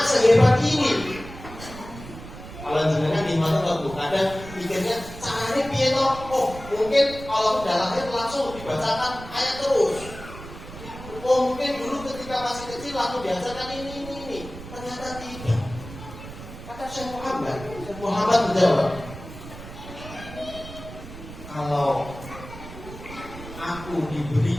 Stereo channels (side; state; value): right; noise; rumble, 13 dB below the sound